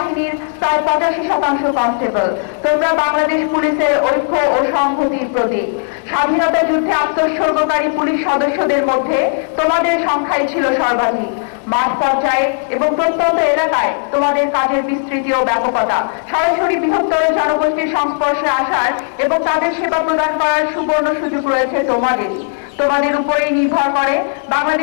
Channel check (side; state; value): right; silent; digital silence